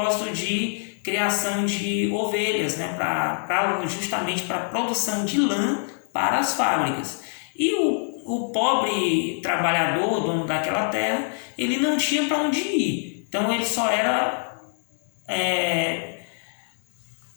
de criação de ovelhas, né, justamente para a produção de lã para as fábricas. E o pobre trabalhador, dono daquela terra, ele não tinha para onde ir. Então ele só era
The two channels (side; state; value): right; silent; digital silence